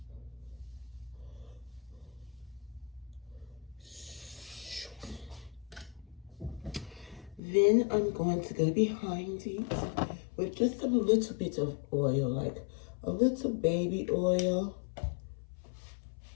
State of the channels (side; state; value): right; drops out; at 7.4 s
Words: Then I'm going to go behind it with just a little bit of oil, like a little baby oil.